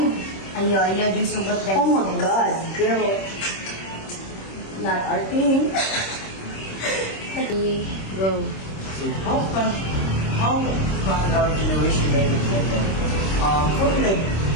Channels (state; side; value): late; right; 26 ms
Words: Ayaw, di sugot guys. Oh my God, girl. Not our thing. Go. So how can our generation make it better? For me, like,